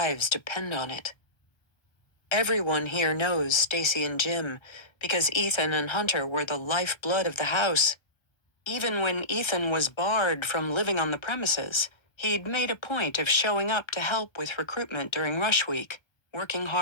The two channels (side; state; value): right; late; 1.2 ms